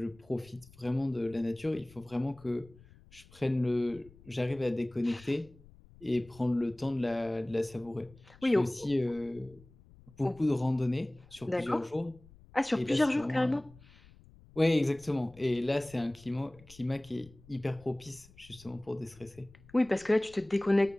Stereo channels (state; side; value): noise; left; rumble, 24 dB below the sound